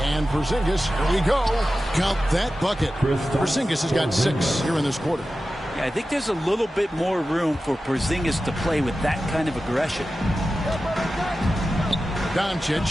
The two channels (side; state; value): both; normal; correlation 0.94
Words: And Porzingis, here we go. Count that bucket. Porzingis has got 6 here in this quarter. Yeah, I think there's a little bit more room for Porzingis to play with that kind of aggression.